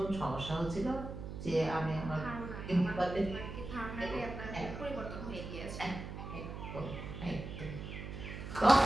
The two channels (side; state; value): right; noise; hum, 8 dB below the sound